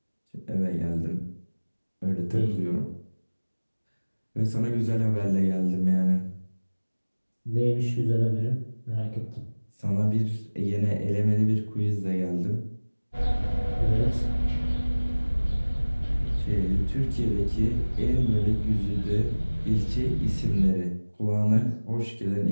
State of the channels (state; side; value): inverted; both; correlation -1.00